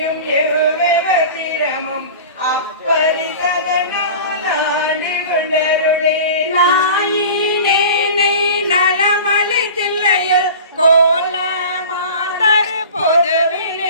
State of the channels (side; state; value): both; inverted; correlation -0.37